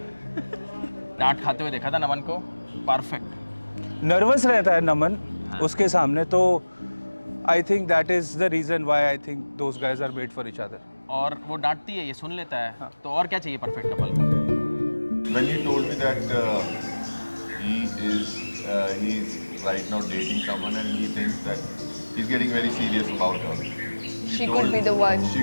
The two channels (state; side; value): inverted; both; correlation -1.00